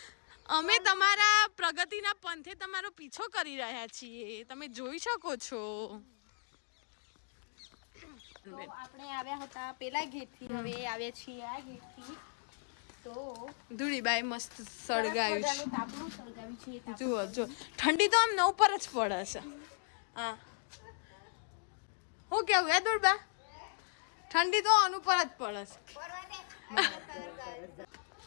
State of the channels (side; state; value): right; silent; digital silence